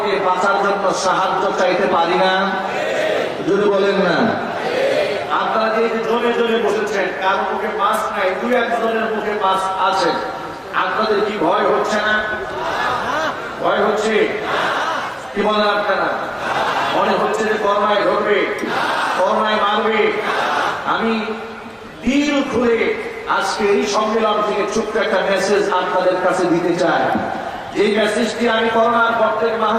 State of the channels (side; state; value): both; identical; correlation 1.00